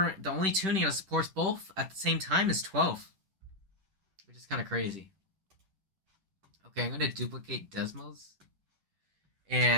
that supports both at the same time is 12, which is kind of crazy. Okay, I'm gonna duplicate Desmos,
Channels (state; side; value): late; left; 10 ms